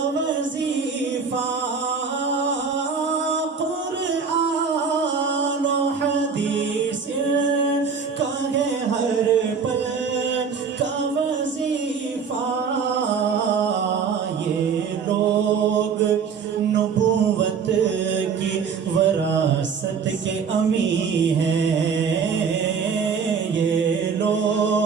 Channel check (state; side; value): quieter; left; 6.0 dB